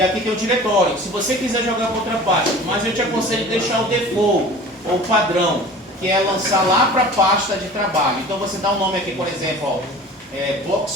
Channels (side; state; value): both; normal; correlation 0.41